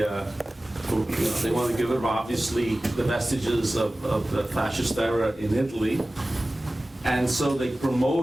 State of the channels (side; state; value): both; normal; correlation 0.97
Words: wanted to get rid of obviously the vestiges of the fascist era in Italy, and so they